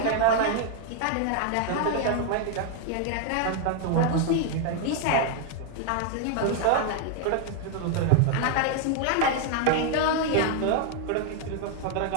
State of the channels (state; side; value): different; both; correlation 0.00